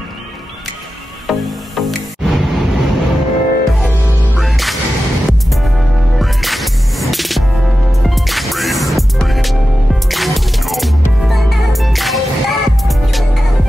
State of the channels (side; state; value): both; normal; correlation 0.93